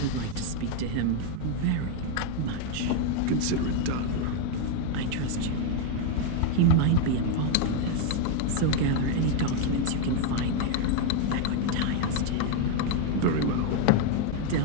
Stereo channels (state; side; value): different; both; correlation 0.01